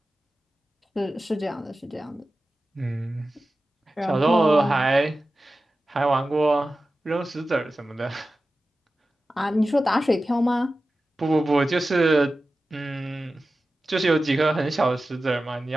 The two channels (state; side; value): normal; both; correlation 0.94